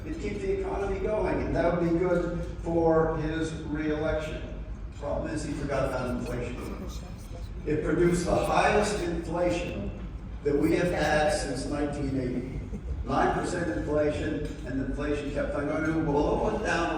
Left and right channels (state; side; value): identical; both; correlation 1.00